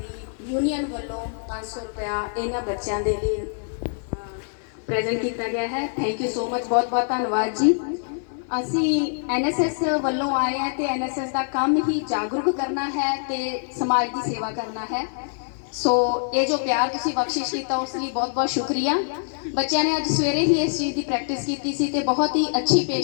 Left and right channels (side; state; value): right; silent; 62 dB below the other